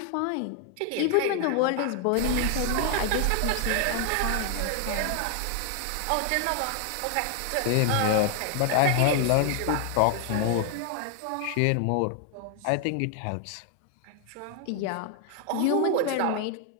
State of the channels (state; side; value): different; both; correlation 0.00